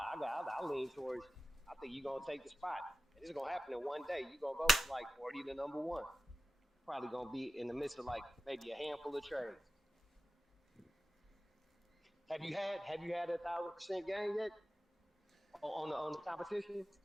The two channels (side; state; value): both; normal; correlation 0.95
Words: lean towards, I think you're going to take the spot. And it's going to happen in one day. You're going to go from like 40 to number 1. Probably going to be in the midst of like maybe a handful of trades. Have you had 1,000% gain yet on the competition?